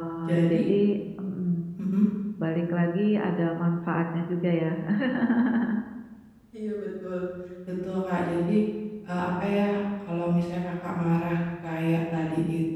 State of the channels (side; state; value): both; identical; correlation 1.00